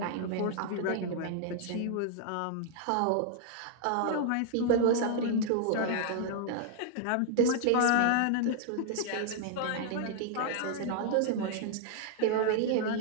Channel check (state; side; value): different; both; correlation -0.01